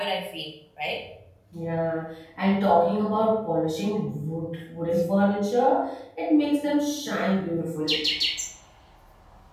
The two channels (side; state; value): both; identical; correlation 1.00